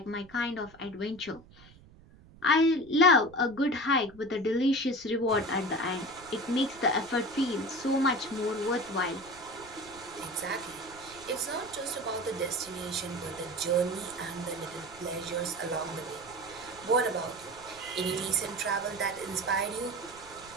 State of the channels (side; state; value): right; noise; rumble, 23 dB below the sound